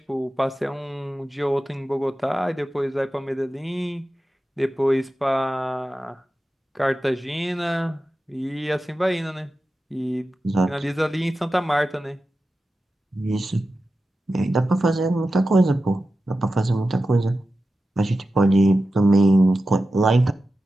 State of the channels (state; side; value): normal; both; correlation 0.93